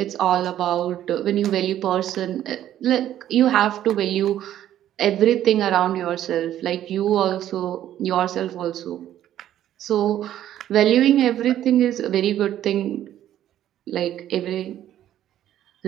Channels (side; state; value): left; quieter; 11.9 dB